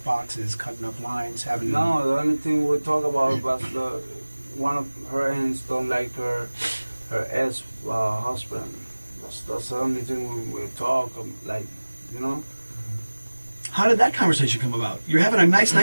boxes, cutting up lines, having... No, the only thing we talk about was one of her aunts don't like her ex-husband. That's the only thing we talk, like, you know? How did that conversation come about? You're having a nice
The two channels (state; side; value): inverted; both; correlation -1.00